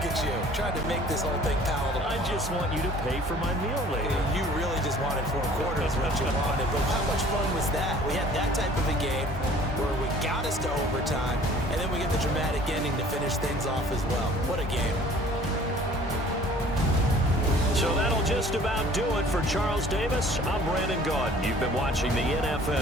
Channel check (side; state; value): both; normal; correlation 0.51